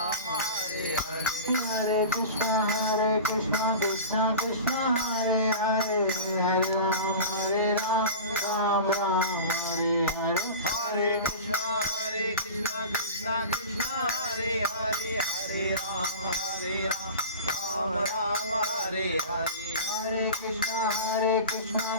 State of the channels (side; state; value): both; inverted; correlation -0.33